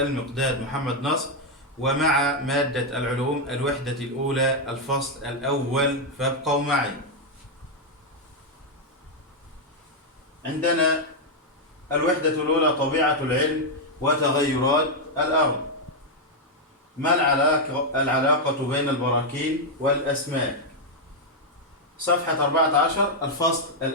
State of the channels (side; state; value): both; normal; correlation 0.00